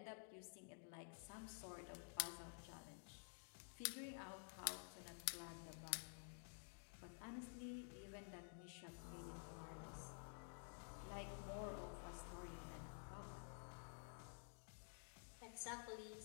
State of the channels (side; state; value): right; silent; digital silence